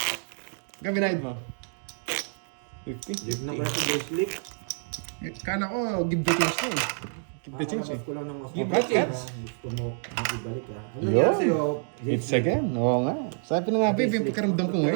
Gabinahid mo? 50? Live na pala si Bracelet. Kala ko, give the chance na eh. Give the chance eh. Kakalabas ko lang ng mas Give mabait, the chance. ah. Gusto mo ibalik ah. Ano Yun. nangyari sa'yo? It's again, oo nga. Sabi na nga, babe, yung pakiramdam ko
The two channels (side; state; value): left; silent; 59 dB below the other